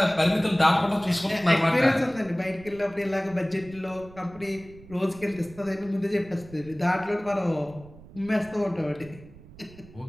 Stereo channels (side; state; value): right; noise; rumble, 20 dB below the sound